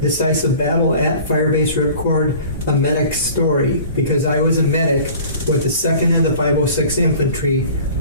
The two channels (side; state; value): both; inverted; correlation -0.45